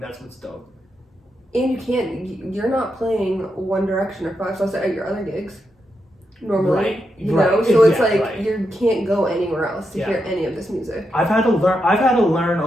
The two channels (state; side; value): normal; both; correlation 0.85